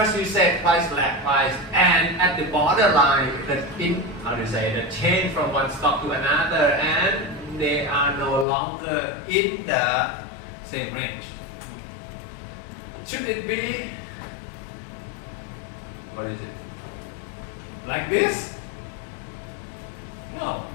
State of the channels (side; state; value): right; drops out; at 8.5 s